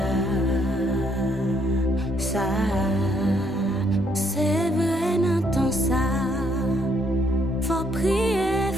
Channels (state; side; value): normal; both; correlation 0.70